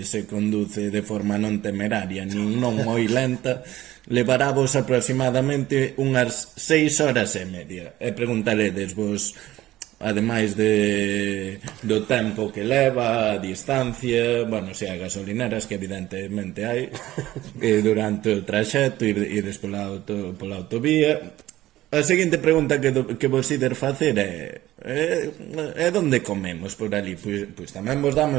se conduce de forma non temeraria nin non moi lenta, levaravos aproximadamente unhas 6 horas e media. E preguntaredes vos, ademais do tempo que leva, a distancia, bueno, se hai gasolineras, que evidentemente hai, durante o traxecto, ires pola autovía. A seguinte pregunta que vos ides facer é onde comemos por ali? Pois tamén vos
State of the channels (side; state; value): left; quieter; 15.4 dB